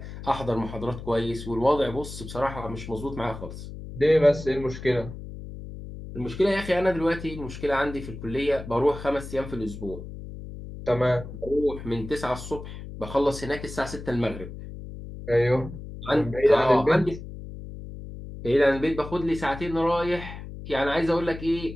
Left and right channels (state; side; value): noise; left; hum, 11 dB below the sound